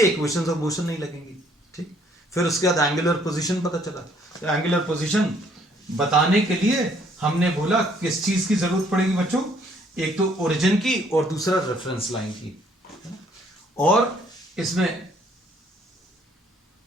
इक्वेशंस ऑफ मोशन नहीं लगेंगी, ठीक। फिर उसके बाद एंगुलर पोजीशन पता चला। तो एंगुलर पोजीशन बताने के लिए हमने बोला किस चीज की जरूरत पड़ेगी बच्चों? एक तो ओरिजिन की और दूसरा रेफरेंस लाइन की, और इसमें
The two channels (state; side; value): normal; both; correlation 0.64